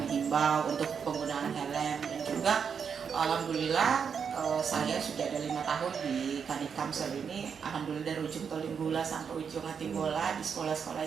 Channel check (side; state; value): left; quieter; 6.7 dB